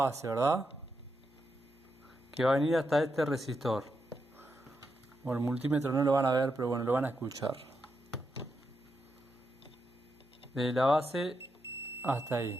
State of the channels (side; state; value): both; normal; correlation 0.84